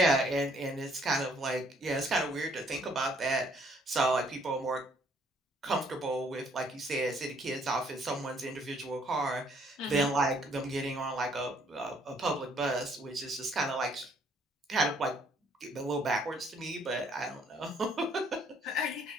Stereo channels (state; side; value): normal; both; correlation 0.64